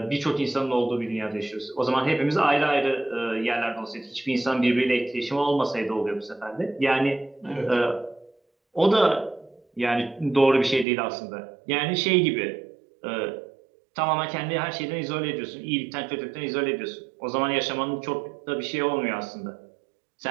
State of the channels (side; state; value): left; drops out; at 10.9 s